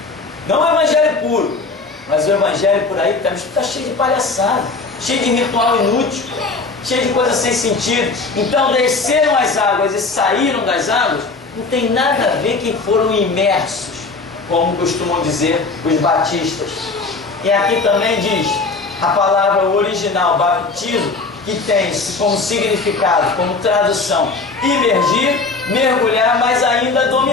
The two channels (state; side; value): quieter; right; 3.9 dB